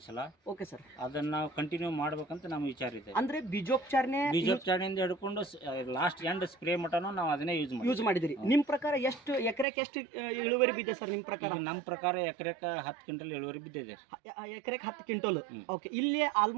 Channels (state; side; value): drops out; left; at 9.7 s